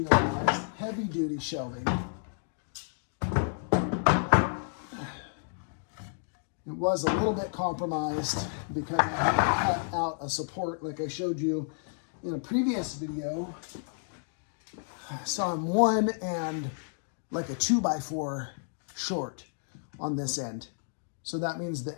heavy-duty shelving. It was a little bit compromised because I had to cut out a support like I showed you in a previous video. So I'm 1 and like a 2x4 short on this end. So that means the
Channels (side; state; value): right; silent; digital silence